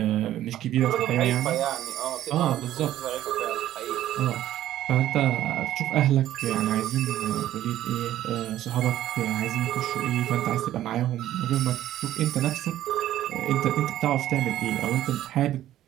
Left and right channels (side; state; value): left; quieter; 13.0 dB